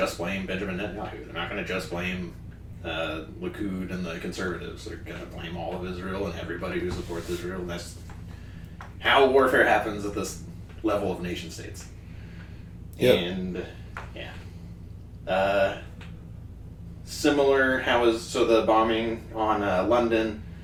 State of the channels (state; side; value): identical; both; correlation 1.00